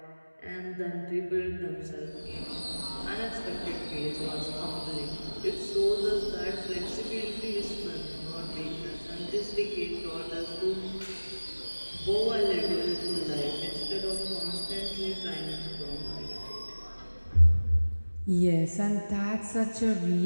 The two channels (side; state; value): both; inverted; correlation -1.00